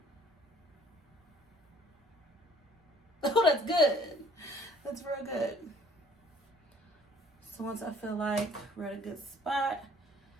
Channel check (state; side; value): normal; both; correlation 0.57